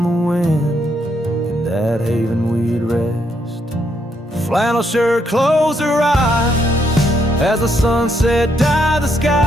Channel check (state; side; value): normal; both; correlation 0.75